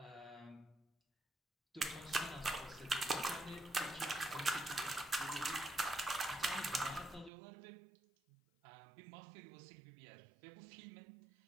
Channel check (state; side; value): drops out; left; at 7.3 s